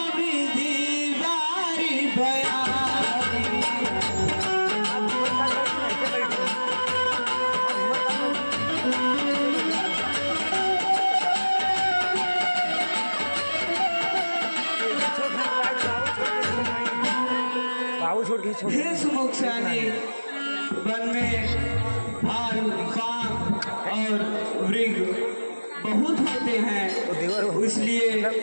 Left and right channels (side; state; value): both; inverted; correlation -1.00